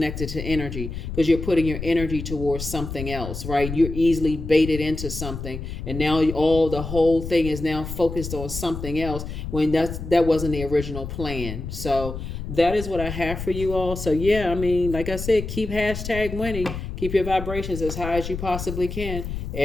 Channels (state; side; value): noise; left; rumble, 7 dB below the sound